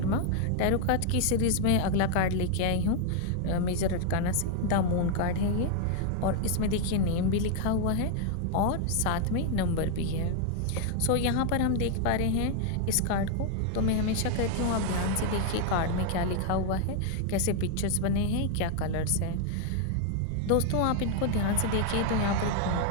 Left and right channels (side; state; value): both; different; correlation 0.00